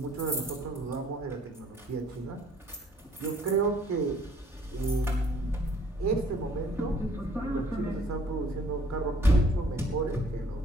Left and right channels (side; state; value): both; normal; correlation 0.58